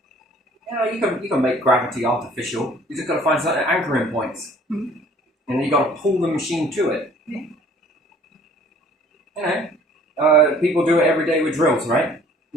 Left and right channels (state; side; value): normal; both; correlation 0.54